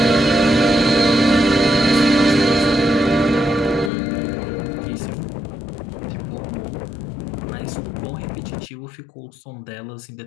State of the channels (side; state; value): right; drops out; at 3.9 s